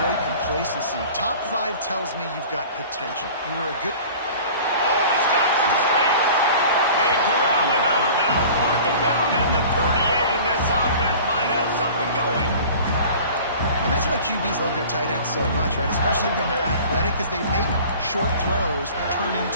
complacency. Top 5 tells me you've got potential. You were a good... Oh, he's got some space. They corral him out of bounds. Mark it down at the 38, and this offense might have something going. And that's why QBs love their tight ends so much, right? Especially when they're athletic, because they make short throws turn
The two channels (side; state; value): both; inverted; correlation -0.43